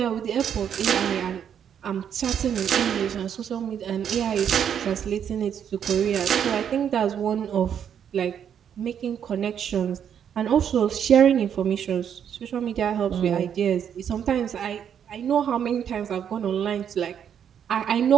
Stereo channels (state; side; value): quieter; left; 8.6 dB